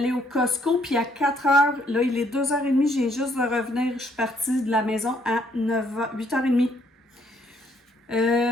au Costco, puis à 4h, là, il est 2h30, j'ai juste de revenir. Je suis partie de la maison à 8h30.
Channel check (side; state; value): both; normal; correlation 0.68